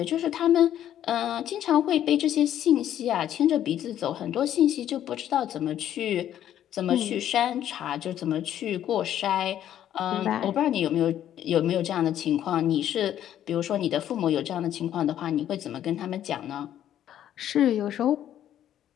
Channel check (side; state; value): right; quieter; 11.1 dB